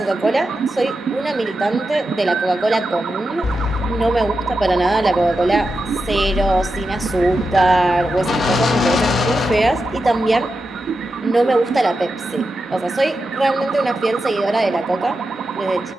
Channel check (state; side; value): normal; both; correlation 0.89